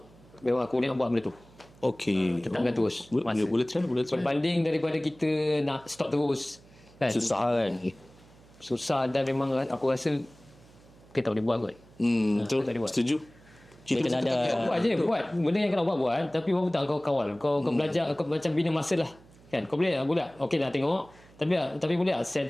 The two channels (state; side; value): noise; right; hum, 25 dB below the sound